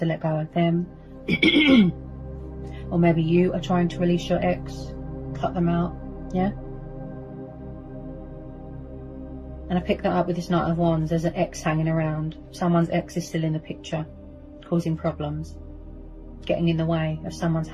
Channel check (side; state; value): both; identical; correlation 1.00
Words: let go of them. Or maybe you are trying to release your ex, cut them out, yeah? And I picked that up with this Knight of Wands. There's an ex hanging around. Someone's ex is still in the picture, causing problems, getting in the way of someone's